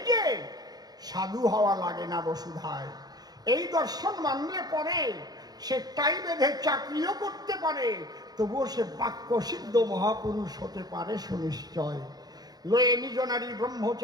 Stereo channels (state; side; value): late; left; 0.19 ms